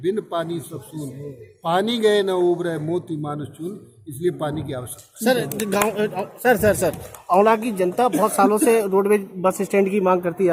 बिन पानी सब सून, पानी गए न उबरे मोती मानुष चून। इसलिए पानी की आवश्यकता। सर गाँव सर औला की जनता बहुत सालों से रोडवेज बस स्टैंड की मांग करती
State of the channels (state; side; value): identical; both; correlation 1.00